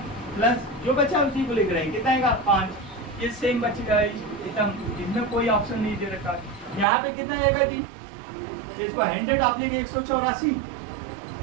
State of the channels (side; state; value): left; drops out; at 6.9 s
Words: प्लस जो बचा उसी को लिख रहे हैं, कितना आएगा 5, ये सेम बच गया, एकदम इसमें कोई ऑप्शन नहीं दे रखा। यहाँ पे कितना आएगा जी, इसको 100 आप लेंगे 184,